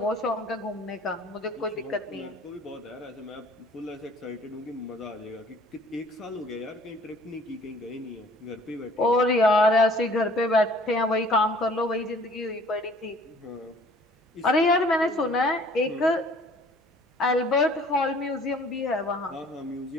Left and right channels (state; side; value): normal; both; correlation 0.54